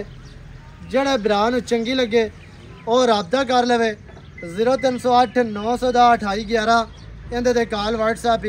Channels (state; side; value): identical; both; correlation 1.00